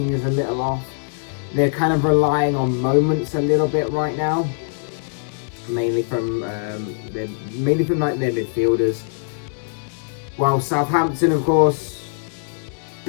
is a little off. They're kind of relying on moments a little bit right now, mainly from their midfielders. While Southampton, of course,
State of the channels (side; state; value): right; silent; digital silence